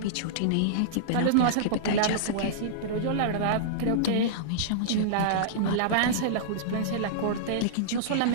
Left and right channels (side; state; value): both; different; correlation -0.03